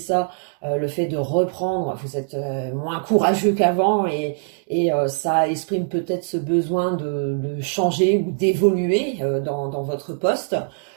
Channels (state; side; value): silent; left; digital silence